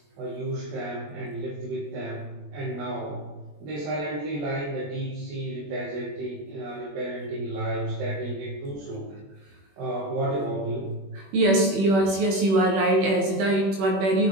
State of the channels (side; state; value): left; late; 21 ms